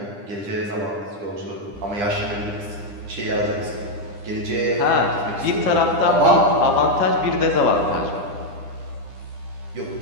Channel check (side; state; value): left; late; 9.9 ms